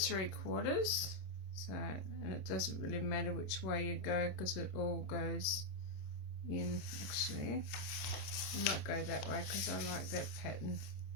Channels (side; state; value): right; late; 26 ms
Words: So, and it doesn't really matter which way you go because it all goes in. Actually, I might go that way because I like that pattern